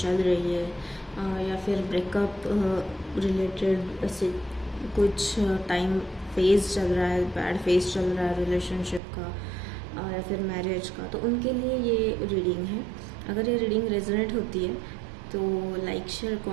रही है, या फिर ब्रेकअप रिलेटेड ऐसे कुछ टाइम फेज चल रहा है, बैड फेज चल रहा है रिलेशनशिप का या फिर मैरिज का, तो उनके लिए ये रीडिंग है। अगर ये रीडिंग रेजोनेट होती है तो लाइक शेयर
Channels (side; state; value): left; drops out; at 9.0 s